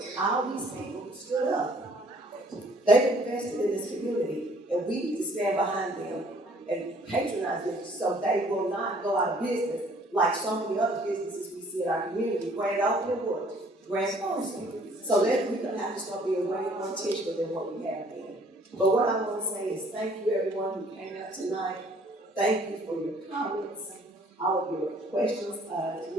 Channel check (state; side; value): normal; both; correlation 0.58